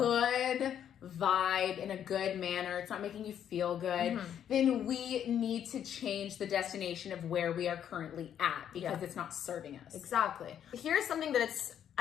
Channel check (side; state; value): right; quieter; 9.5 dB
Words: In a good vibe, in a good manner, it's not making you feel good, then we need to change the destination of where we are currently at because it's not serving us. Exactly. Here's something that it's